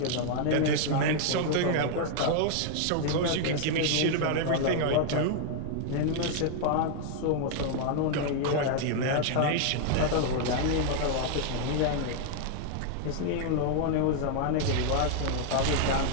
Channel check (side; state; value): both; different; correlation 0.00